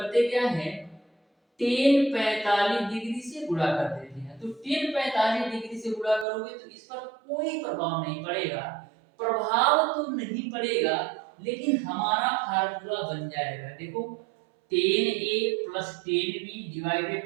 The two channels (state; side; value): drops out; left; at 6.2 s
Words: क्या है, टेन 45 डिग्री से गुणा कर देते हैं। तो टेन 45 डिग्री से गुणा करोगे तो इस पर कोई प्रभाव नहीं पड़ेगा, प्रभाव तो नहीं पड़ेगा, लेकिन हमारा फार्मूला बन जाएगा। देखो, tan A plus tan B divided